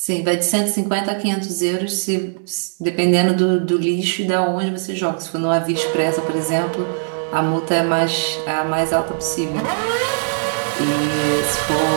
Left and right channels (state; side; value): silent; left; 66 dB below the other